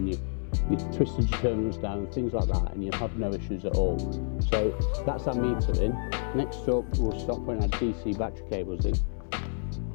you twisted your terminals down and things like that, and you'll have no issues at all. So that's our meter in. Next up, we'll start putting our DC battery cables in.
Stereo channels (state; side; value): silent; right; 59 dB below the other